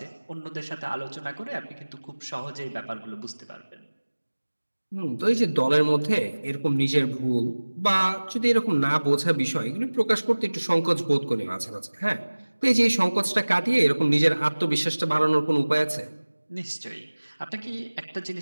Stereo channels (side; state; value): both; inverted; correlation -1.00